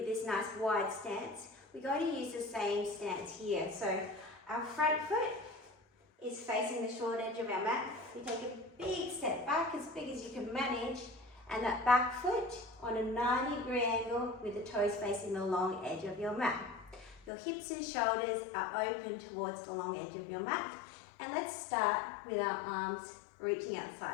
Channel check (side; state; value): right; drops out; at 17.3 s